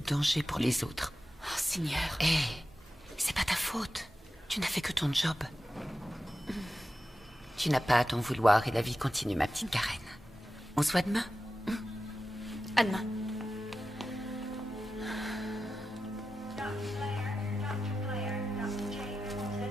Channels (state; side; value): normal; both; correlation 0.93